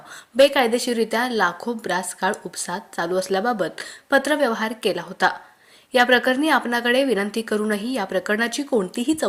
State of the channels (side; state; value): both; identical; correlation 1.00